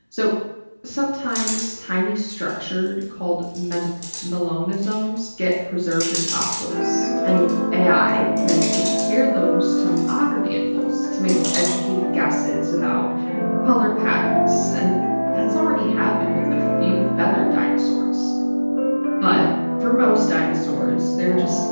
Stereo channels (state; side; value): inverted; both; correlation -1.00